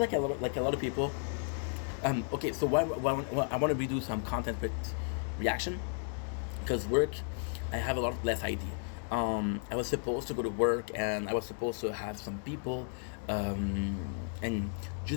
like a lot of people. Okay, so why I want to redo some content with reaction, because work, I have a lot less ID. I was supposed to go to work and I was supposed to have some people and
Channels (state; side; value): silent; right; 55 dB below the other